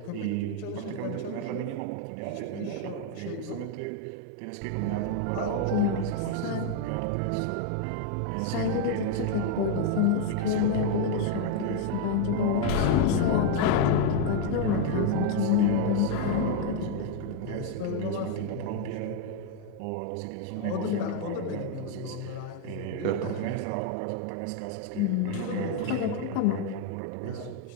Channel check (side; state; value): both; different; correlation 0.00